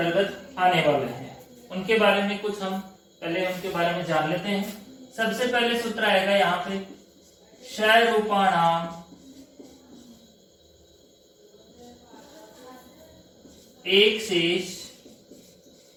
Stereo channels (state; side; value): identical; both; correlation 1.00